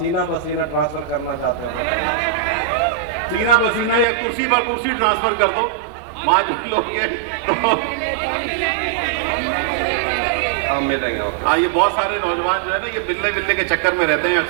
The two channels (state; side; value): drops out; left; at 4.0 s